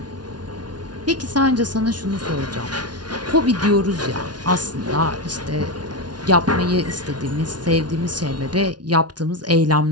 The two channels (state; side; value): late; left; 0.69 ms